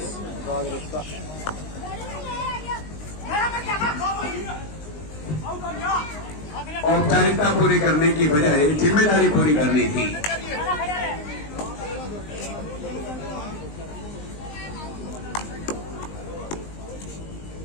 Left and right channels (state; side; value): late; right; 19 ms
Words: राजरीफ का। औपचारिकता पूरी करने की बजाय जिम्मेदारी पूरी करनी थी।